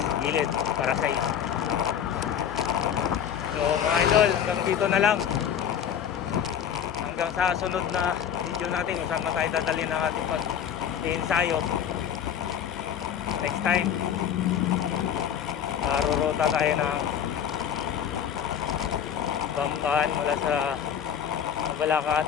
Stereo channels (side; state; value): right; quieter; 8.8 dB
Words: gilid para sa iyo. So mga idol, hanggang dito na lang. Hanggang sa sunod na video natin kung saan tayo dadalhin ng ating pag-ensayo next time. Rurota tayo ng Bamban mula sa Balakat,